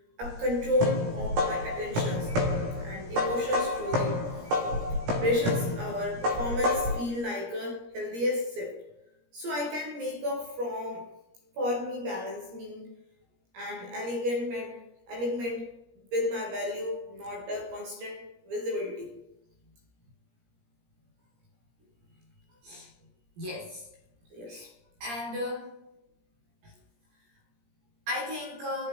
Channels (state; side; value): late; left; 17 ms